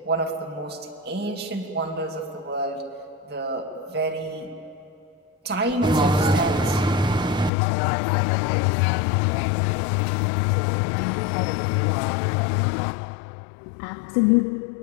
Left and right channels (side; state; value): right; drops out; at 7.5 s